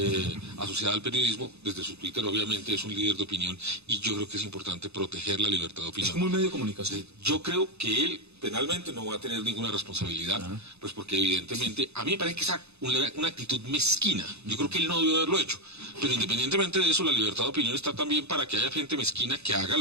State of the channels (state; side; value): late; left; 0.80 ms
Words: asociada al periodismo, desde su Twitter obviamente es un líder de opinión y yo creo que es importante proteger la libertad de opinión. Es como un medio de comunicación. Yo creo que él penalmente no va a tener ninguna responsabilidad, pues porque evidentemente a mí me parece que es una actitud mezquina. Yo creo que él no debió haberlo hecho, pero independientemente de eso, la libertad de opinión está también para que haya gente mezquina que haga